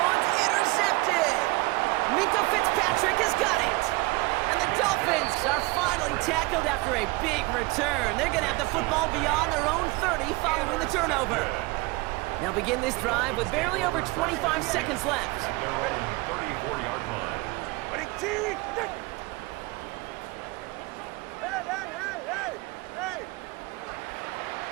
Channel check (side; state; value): left; quieter; 23.7 dB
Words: intercepted. Minka Fitzpatrick has got it. And the Dolphins are finally tackled after a big return. They're going to have the football beyond their own 30 following the turnover. They'll begin this drive with barely over 25 seconds left. At their own 34-yard line. Hey!